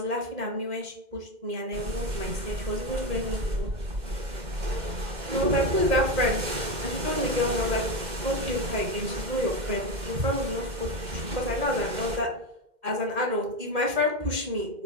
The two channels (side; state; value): left; late; 2.1 ms